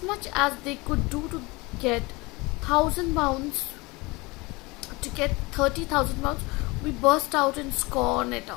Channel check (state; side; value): quieter; right; 24.2 dB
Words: much as they could do to get £1,000 to get £30,000, we burst out in scorn at the